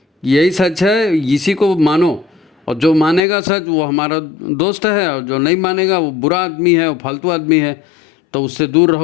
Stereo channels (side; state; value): right; drops out; at 3.2 s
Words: यही सच है, इसी को मानो, और जो मानेगा सच वो हमारा दोस्त है, और जो नहीं मानेगा वो बुरा आदमी है, वो फालतू आदमी है, तो उससे दूर